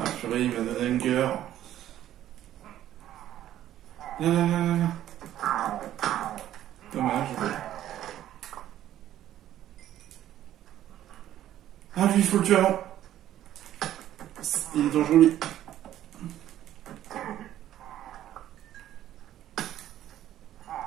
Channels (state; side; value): quieter; left; 12.3 dB